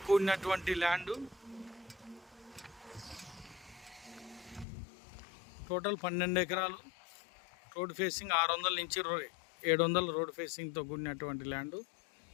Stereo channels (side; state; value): right; drops out; at 4.7 s